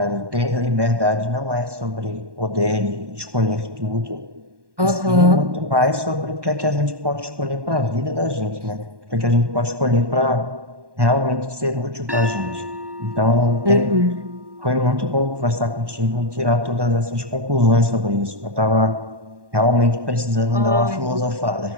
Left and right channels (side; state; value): left; late; 1.1 ms